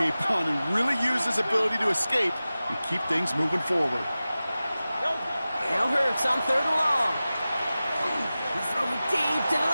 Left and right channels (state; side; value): inverted; both; correlation -0.96